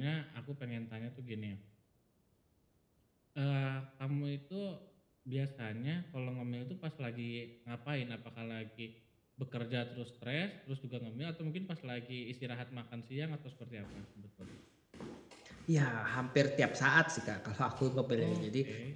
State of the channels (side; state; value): both; identical; correlation 1.00